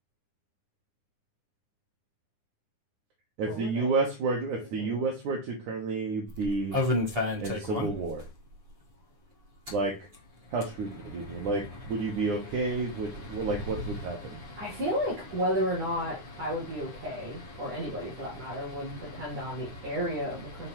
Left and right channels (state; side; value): late; left; 9.8 ms